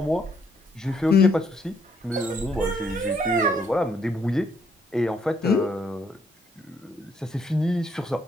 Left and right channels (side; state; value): both; normal; correlation 0.70